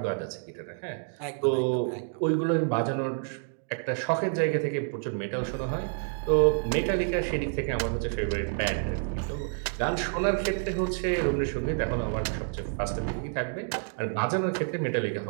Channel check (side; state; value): left; silent; 59 dB below the other